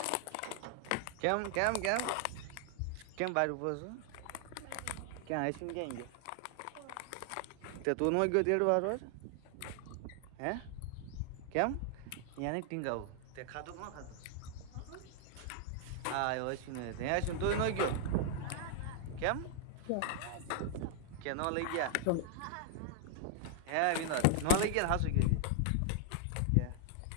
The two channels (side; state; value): both; different; correlation 0.00